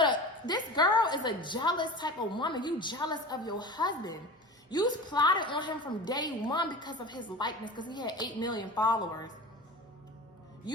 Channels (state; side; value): normal; both; correlation 0.33